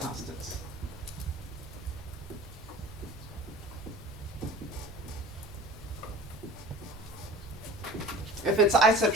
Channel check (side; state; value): both; normal; correlation 0.41